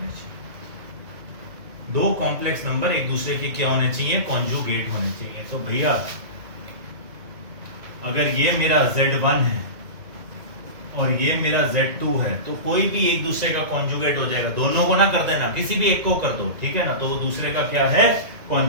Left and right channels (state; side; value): late; left; 1.9 ms